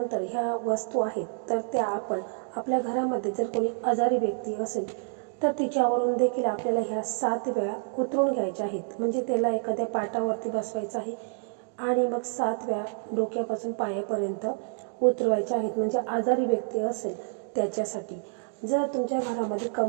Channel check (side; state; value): left; silent; digital silence